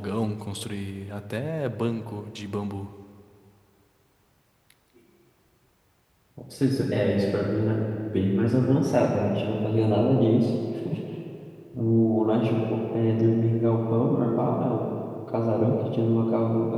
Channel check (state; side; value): identical; both; correlation 1.00